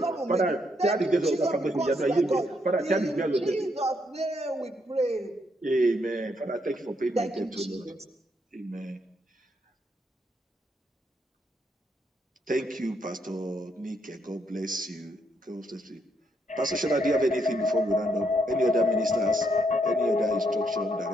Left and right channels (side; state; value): both; normal; correlation 0.75